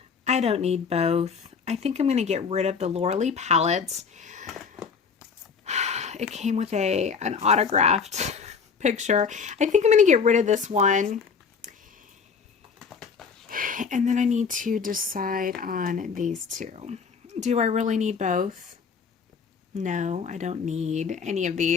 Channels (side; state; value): right; quieter; 5.9 dB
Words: I don't need both. I think I'm going to get rid of the Laura Lee palettes. It came with an autographed picture. I think I'm going to get rid of this one. And then I need to decide on these two. Do I really need both? No, I don't need any of